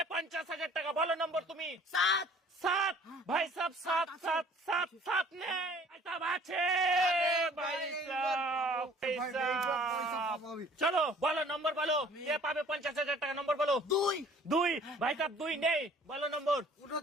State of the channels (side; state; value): both; normal; correlation 0.53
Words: 50,000 টাকা? বলো নম্বর তুমি। 7 7 ভাই সাহেব, 7 7 7 7 নেই ভাই সাহেব, আছে ভাই সাহেব, ভাই সাহেব। চলো বলো নম্বর বলো, কে পাবে 50,000 টাকা? নম্বর বলো। 2 2 ভাই সাহেব, 2 নেই, বলো নম্বর।